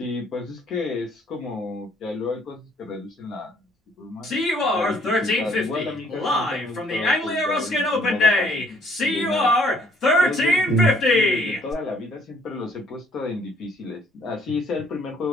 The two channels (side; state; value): both; normal; correlation 0.63